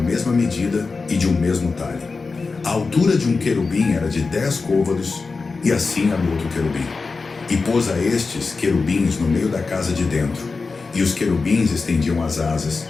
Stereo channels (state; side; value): quieter; right; 4.3 dB